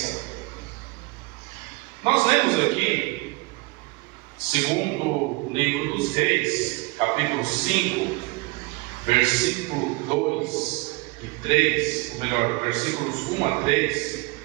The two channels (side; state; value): left; quieter; 24.2 dB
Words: Nós lemos aqui, segundo o livro dos Reis, capítulo 5, versículo 2 e 3, ou melhor, versículos 1 a 3,